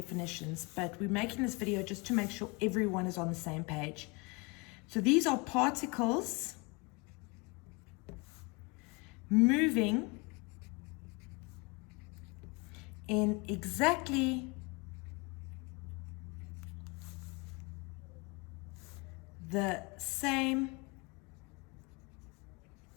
but we're making this video just to make sure everyone is on the same page. So these are particles moving in exactly the same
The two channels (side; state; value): right; quieter; 27.9 dB